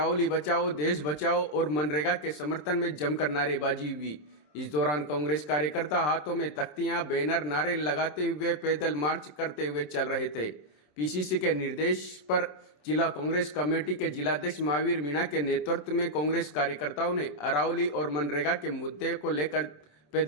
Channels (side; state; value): right; late; 27 ms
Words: बचाओ, देश बचाओ और मनरेगा के समर्थन में जमकर नारेबाजी हुई। इस दौरान कांग्रेस कार्यकर्ता हाथों में तख्तियां, बैनर, नारे लगाते हुए पैदल मार्च करते हुए चल रहे थे। पीसीसी के निर्देश पर जिला कांग्रेस कमेटी के जिलाध्यक्ष महावीर मीणा के नेतृत्व में कांग्रेस कार्यकर्ताओं ने अरावली और मनरेगा के मुद्दे को लेकर